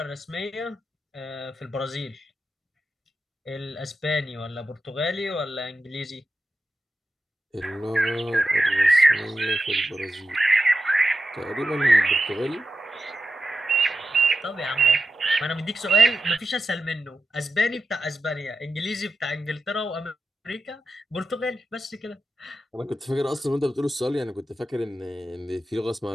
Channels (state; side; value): normal; both; correlation 0.90